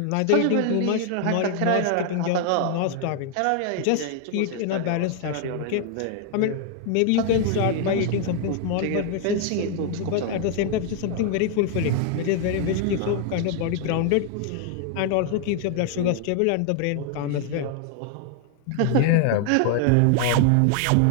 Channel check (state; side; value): different; both; correlation 0.00